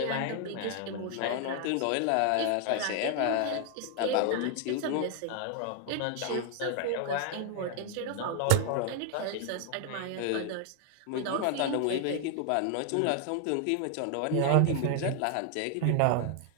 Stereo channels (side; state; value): both; different; correlation 0.00